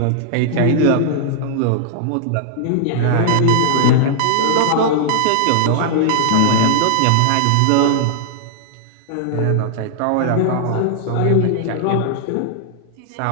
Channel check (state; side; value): different; both; correlation -0.01